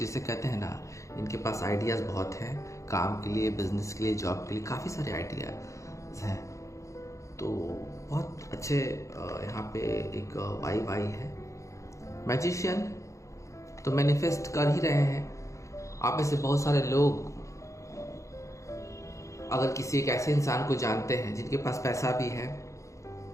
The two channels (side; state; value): right; late; 0.15 ms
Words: कहते हैं ना, इनके पास आइडियाज़ बहुत हैं काम के लिए, बिजनेस के लिए, जॉब के लिए, काफ़ी सारे आइडियाज़ हैं। तो बहुत अच्छे यहाँ पे एक वाइब आई है। मैजिशियन तो मैनिफेस्ट कर ही रहे हैं। आप में से बहुत सारे लोग अगर किसी एक ऐसे इंसान को जानते हैं जिनके पास पैसा भी है,